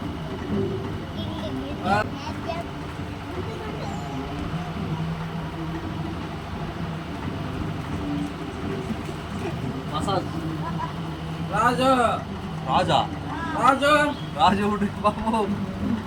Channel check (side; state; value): both; identical; correlation 1.00